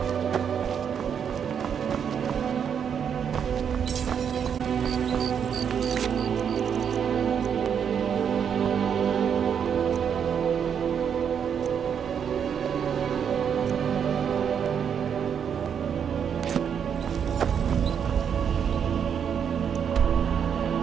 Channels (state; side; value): quieter; left; 7.7 dB